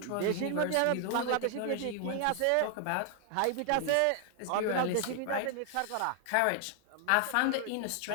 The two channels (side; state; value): both; different; correlation 0.00